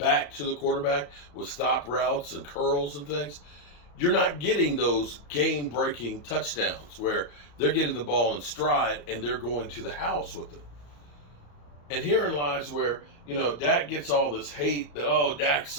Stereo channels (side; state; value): right; late; 34 ms